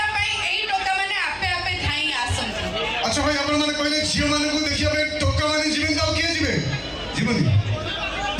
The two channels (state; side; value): identical; both; correlation 1.00